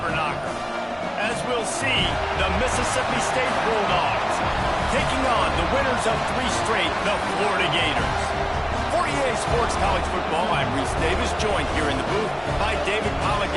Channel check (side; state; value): both; identical; correlation 1.00